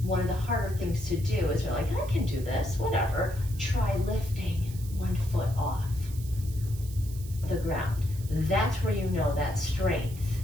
one of the harder things to do is you're like, I can do this, whatever. Try lifting one foot off the ground. That's where you know that strength.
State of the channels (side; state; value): right; noise; hiss, 18 dB below the sound